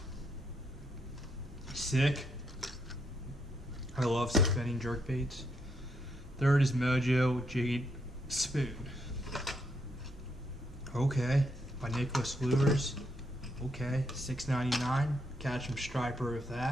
Sick. I love suspending jerkbaits. Third is Mojo Jade Spoon. Okay, by Nicholas Lures. Okay, $6.99. Catch 'em striper with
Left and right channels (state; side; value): normal; both; correlation 0.77